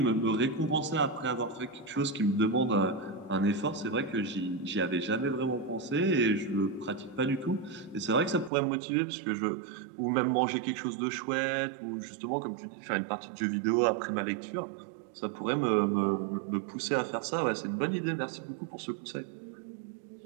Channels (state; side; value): drops out; left; at 8.5 s